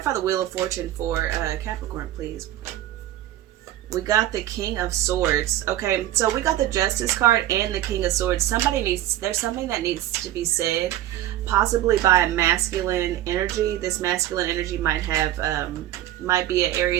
the Wheel of Fortune for Capricorn, please. We got the King of Swords. Okay, so we got the Justice card and the King of Swords. There's something that needs to be said, possibly by a masculine energy. This masculine energy might be a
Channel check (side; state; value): left; quieter; 13.4 dB